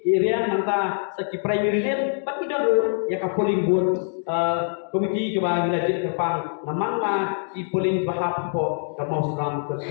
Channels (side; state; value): right; silent; digital silence